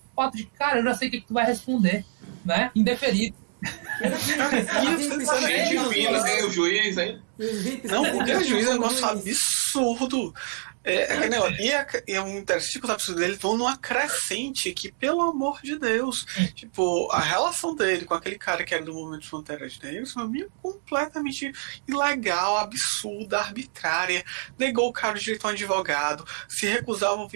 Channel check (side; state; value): left; silent; digital silence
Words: fato de, cara, eu já sei o que tu vai responder, né? Indeferido. Gente fina, hein? O juiz, hein? Não, o juiz é um negócio absurdo. E é um interessante que os absurdos dele vão numa crescente que, pelo amor de Deus, tipo, a relação dele com aquele cara que era do Movimento de Fronteiras Negras foi meio completamente ilegal, absurda, arbitrária. Negou o cara o direito a um advogado, se recusava a